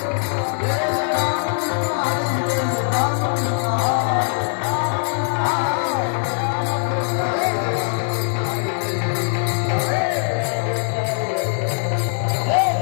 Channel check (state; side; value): silent; right; digital silence